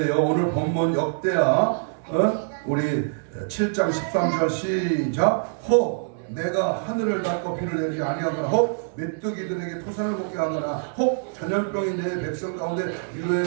오늘 본문 역대하 우리 7장 13절 시작. 혹 내가 하늘을 닫고 비를 내리지 아니하거나 혹 메뚜기들에게 토산을 먹게 하거나 혹 전염병이 내 백성 가운데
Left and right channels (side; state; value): left; silent; digital silence